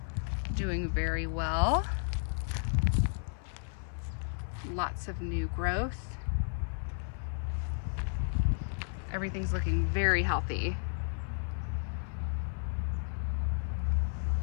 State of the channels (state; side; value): silent; right; 56 dB below the other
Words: doing very well. Lots of new growth. Everything's looking very healthy.